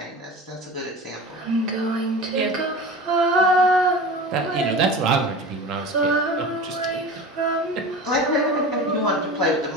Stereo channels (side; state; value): both; normal; correlation 0.34